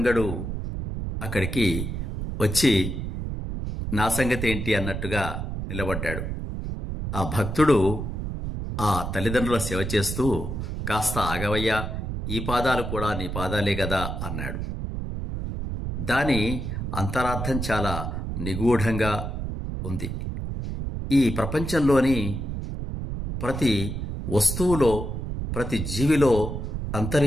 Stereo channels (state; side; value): noise; right; rumble, 4 dB below the sound